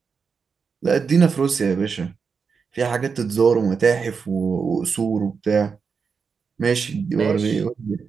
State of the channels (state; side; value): quieter; left; 5.6 dB